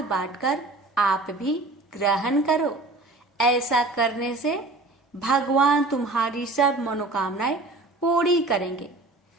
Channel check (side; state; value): left; quieter; 3.1 dB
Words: बांटकर आप भी ग्रहण करो। ऐसा करने से भगवान तुम्हारी सब मनोकामनाएं पूरी करेंगे।